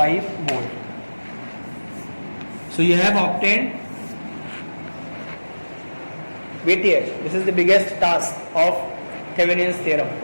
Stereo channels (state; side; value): inverted; both; correlation -1.00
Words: volt. So you have obtained VTH. This is the biggest task of Thevenin's theorem,